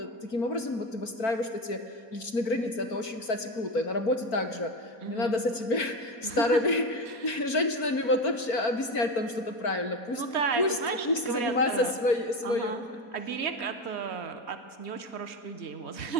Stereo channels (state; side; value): late; right; 4.5 ms